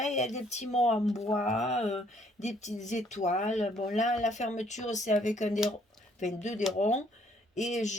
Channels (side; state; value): both; normal; correlation 0.64